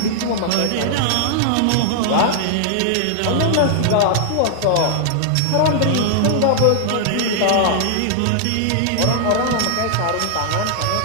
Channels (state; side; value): different; both; correlation -0.01